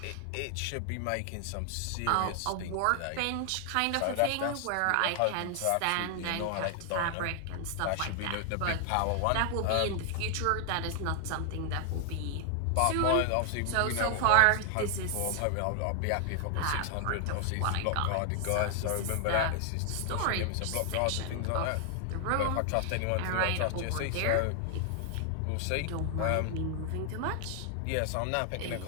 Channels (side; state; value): both; different; correlation 0.00